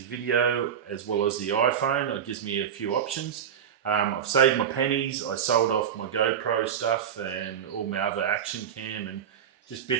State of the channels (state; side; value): quieter; left; 8.4 dB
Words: video as well as the iPhone. It gives me a few options. I've saved my pennies. I sold off my GoPro stuff and all my other action cam and just